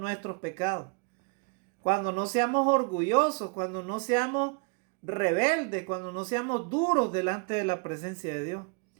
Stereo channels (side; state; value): left; quieter; 34.1 dB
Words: pecados. Cuando no seamos orgullosos, cuando no seamos rebeldes, cuando no seamos duros delante de la presencia de Dios.